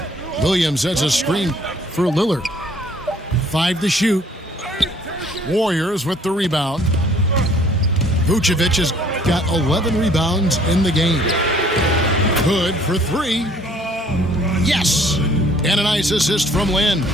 Williams sets a screen for Lillard. 5 to shoot. Warriors with the rebound. Vucevic has got 11 rebounds in the game. Good for 3. Yes! And a nice assist from Lynn.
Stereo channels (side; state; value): both; normal; correlation 0.58